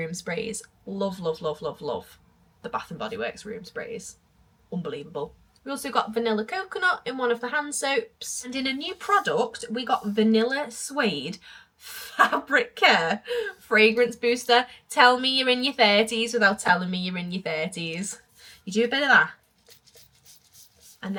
sprays. Love, love, love, love, love. The Bath and Body Works room sprays. Unbelievable. We also got vanilla coconut in one of the hand soaps. And in a new product, we got vanilla suede fabric care fragrance booster. Tell me you're in your 30s without telling me you're in your 30s. You do a bit of that. And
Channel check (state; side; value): identical; both; correlation 1.00